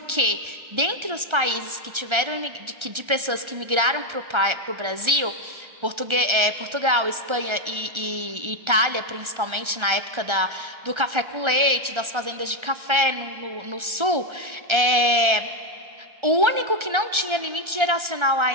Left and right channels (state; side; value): late; left; 1.3 ms